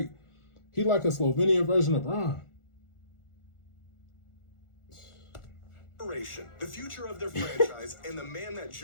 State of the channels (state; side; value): late; right; 1.4 ms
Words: he like a Slovenian version of Bron. The future of their franchise and the man that